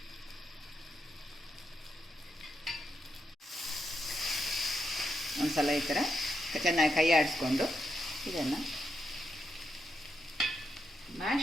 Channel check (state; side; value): normal; both; correlation 0.83